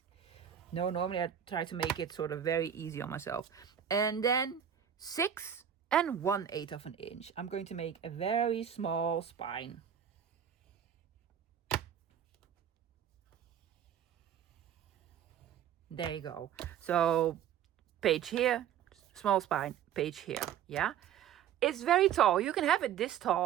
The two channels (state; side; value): quieter; left; 9.2 dB